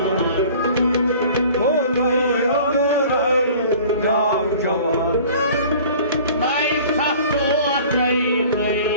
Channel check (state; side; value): inverted; both; correlation -0.46